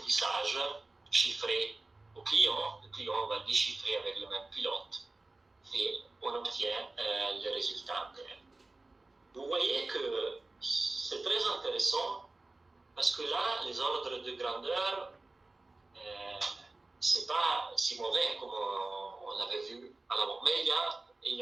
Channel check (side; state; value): left; quieter; 3.1 dB